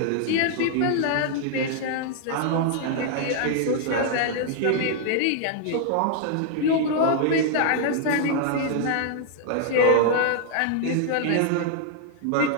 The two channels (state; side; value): different; both; correlation -0.01